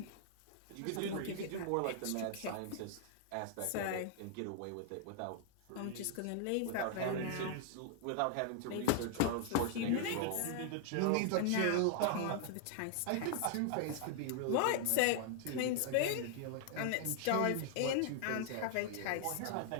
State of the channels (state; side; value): different; both; correlation 0.00